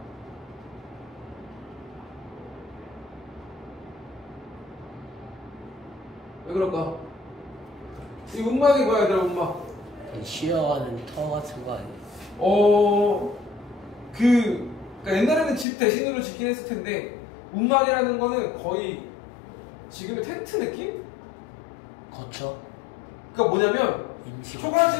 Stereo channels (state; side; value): drops out; right; at 15.7 s